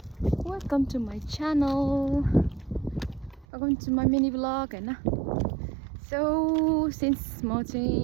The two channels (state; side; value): drops out; left; at 3.5 s